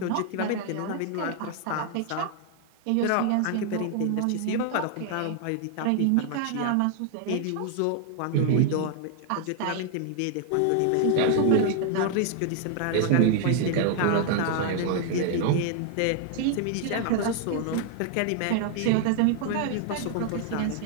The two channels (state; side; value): different; both; correlation 0.00